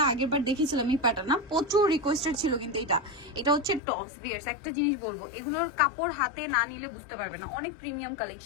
আগের বার দেখেছিলাম, এই প্যাটার্ন না প্রচুর রিকোয়েস্টেড ছিল, কিন্তু এটা হচ্ছে টপস। ভিউয়ার্স একটা জিনিস বলবো, এগুলোর কাপড় হাতে না নিলে বুঝতে পারবে না, অনেক প্রিমিয়াম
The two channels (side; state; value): right; drops out; at 3.8 s